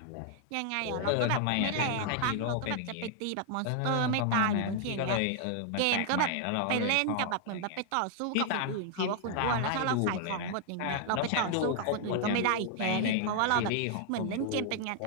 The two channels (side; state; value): both; different; correlation 0.00